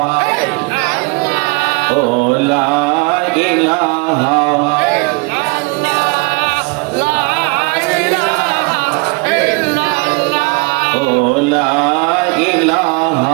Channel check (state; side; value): quieter; left; 29.5 dB